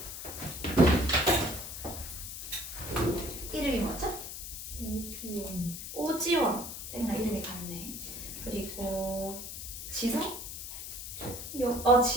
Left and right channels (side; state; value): left; noise; hiss, 8 dB below the sound